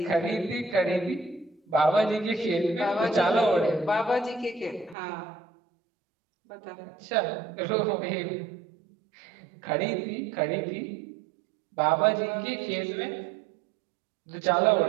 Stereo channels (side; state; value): left; drops out; at 5.0 s